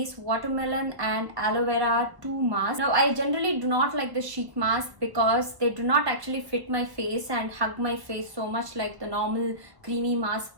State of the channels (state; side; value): late; left; 1.0 ms